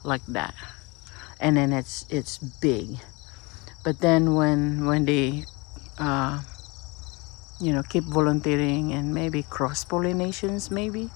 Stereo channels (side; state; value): right; quieter; 26.7 dB